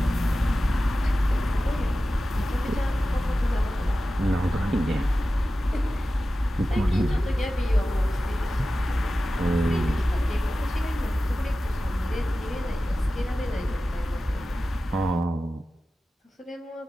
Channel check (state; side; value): normal; both; correlation 0.94